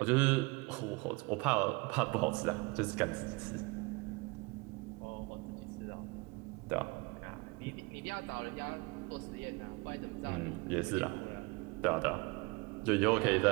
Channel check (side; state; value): left; quieter; 26.6 dB